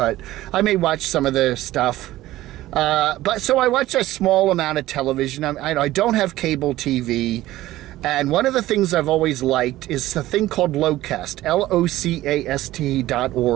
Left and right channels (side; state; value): left; quieter; 15.8 dB